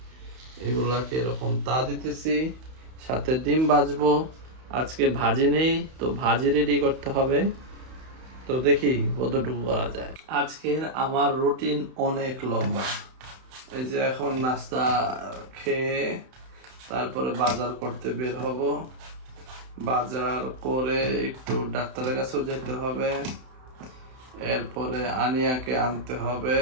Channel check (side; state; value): left; late; 31 ms